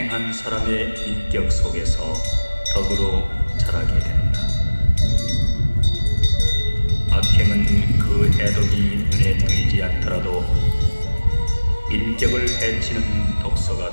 사람의 인격 속에서 덕으로 자라게 된다. 악행은 그 해독이 눈에 보이지 않더라도 인격을 해치는 독소가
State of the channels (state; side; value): inverted; both; correlation -1.00